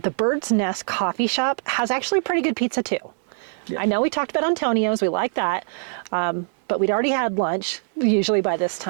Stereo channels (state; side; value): silent; left; 64 dB below the other